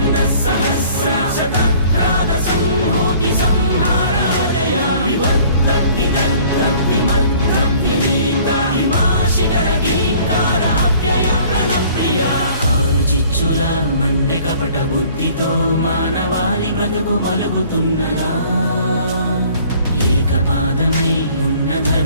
सहस्र शतह्राद संहूति संहारादय विवर्त विदग्ध विमग्ध विनीत हिमाशिखर गिंकार अव्यय प्रणप्रिय ఆరు చిచ్చుల మండె కపట బుద్ధితో మానవాళి బ్రతుకు మలుగుతున్నదా ఏకపాదమై ఉన్న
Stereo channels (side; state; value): both; inverted; correlation -0.53